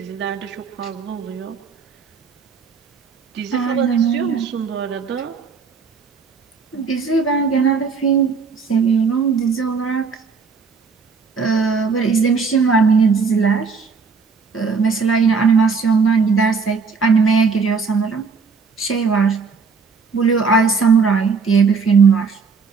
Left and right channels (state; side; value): quieter; left; 5.1 dB